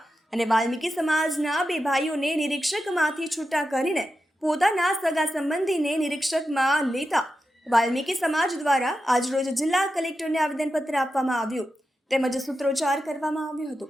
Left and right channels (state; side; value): normal; both; correlation 0.90